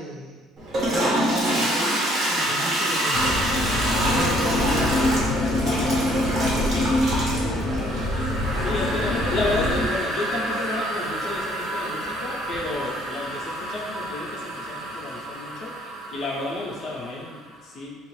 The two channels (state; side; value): normal; both; correlation 0.62